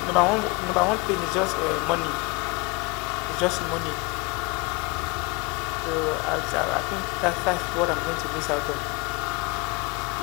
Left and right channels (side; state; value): right; quieter; 27.2 dB